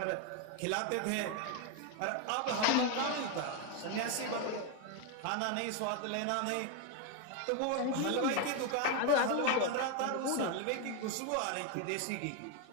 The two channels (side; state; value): both; different; correlation 0.01